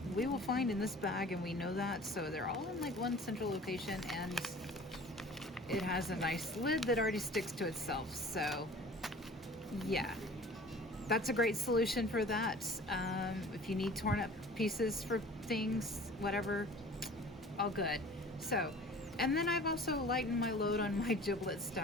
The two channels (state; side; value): normal; both; correlation 0.45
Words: we will find in this bag, and we know that. So they're all in like one central location, and it has a nice lid that already sticks to itself. So yeah, that's a great solution for that. If you need torn up pieces for things, whatever, all good. So, and then I've also lightened my load on my giblet